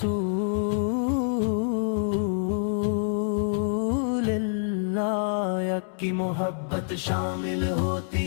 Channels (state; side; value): silent; right; digital silence